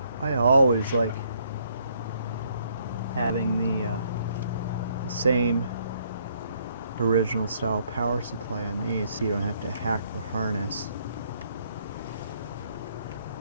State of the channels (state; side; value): inverted; both; correlation -0.69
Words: I always like having the same original style power supply on these so you don't have to hack the harness.